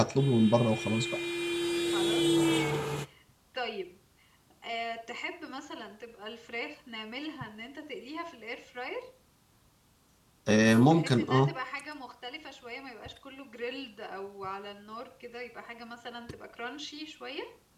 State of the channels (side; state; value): both; identical; correlation 1.00